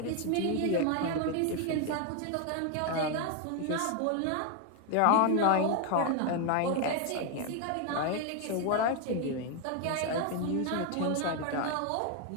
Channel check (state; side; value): different; both; correlation 0.01